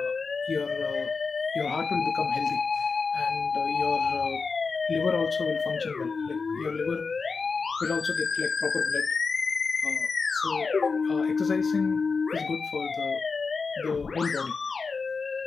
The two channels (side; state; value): right; quieter; 4.7 dB